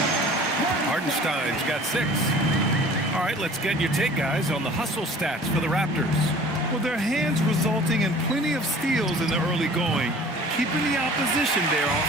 Hartenstein's got 6. All right, let's get your take, guys, on the hustle stats for the Raptors. Well, their hands resulting in plenty of steals in the early going, keeping the opposition there off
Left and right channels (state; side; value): normal; both; correlation 0.47